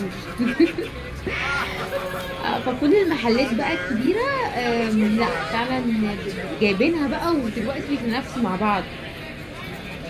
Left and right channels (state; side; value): identical; both; correlation 1.00